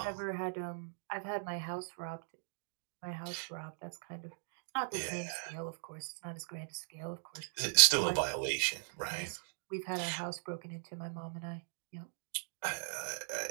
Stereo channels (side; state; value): left; silent; digital silence